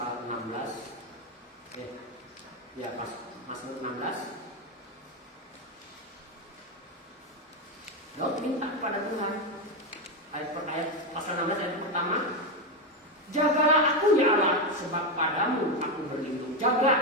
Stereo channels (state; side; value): normal; both; correlation 0.09